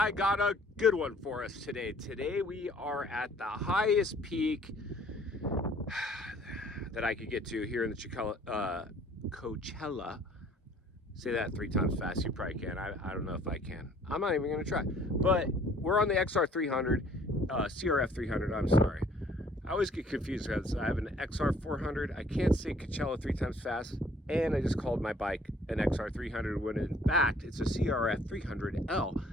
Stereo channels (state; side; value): normal; both; correlation 0.57